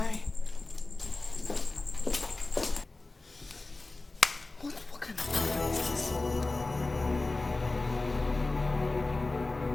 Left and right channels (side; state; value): right; quieter; 3.2 dB